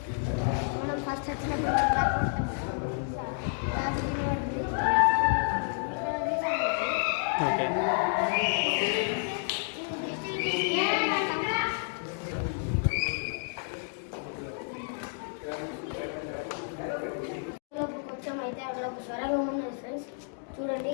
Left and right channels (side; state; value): right; silent; 58 dB below the other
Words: మనం ఫస్ట్ వచ్చినప్పుడు కొంచెం అయితే అక్కడ ఒక స్వరంగం ఉన్నది ఫ్రెండ్స్. చూడండి